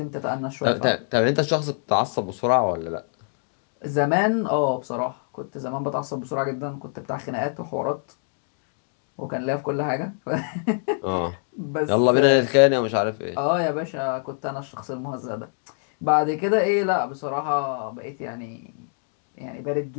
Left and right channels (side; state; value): right; silent; 62 dB below the other